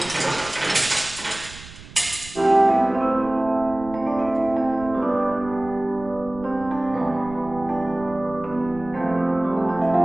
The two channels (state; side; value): noise; right; rumble, 17 dB below the sound